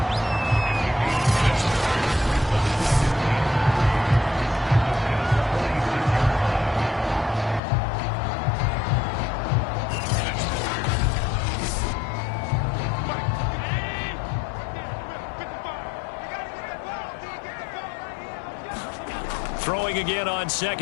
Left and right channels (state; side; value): drops out; right; at 7.6 s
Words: Throwing again on